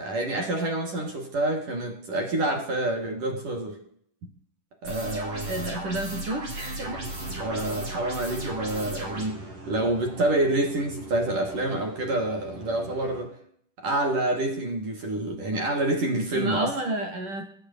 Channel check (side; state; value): left; late; 10 ms